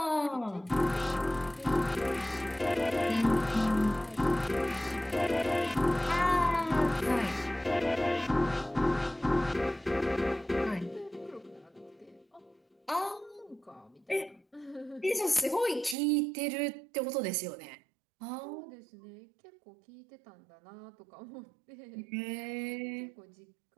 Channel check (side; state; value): left; drops out; at 16.0 s